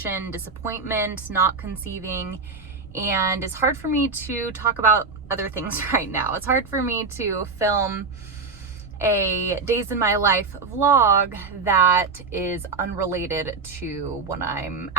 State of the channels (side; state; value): left; quieter; 4.3 dB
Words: disappointment, not conceiving. And it's hard for me to talk about other things right now. It's hard for me to film a days in my life vlog that is unrelated to what I'm